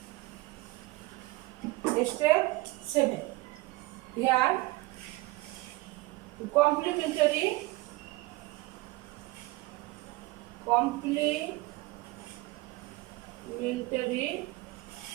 Step 7. Here complementary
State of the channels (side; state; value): left; quieter; 20.9 dB